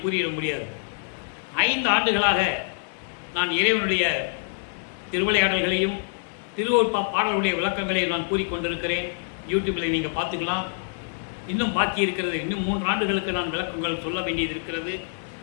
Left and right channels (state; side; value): silent; right; 60 dB below the other